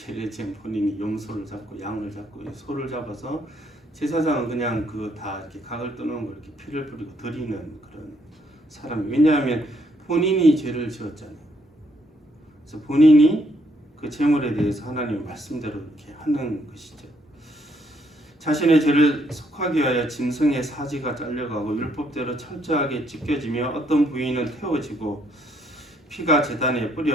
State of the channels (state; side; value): normal; both; correlation 0.71